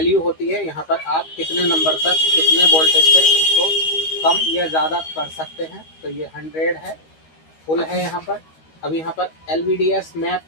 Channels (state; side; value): late; right; 13 ms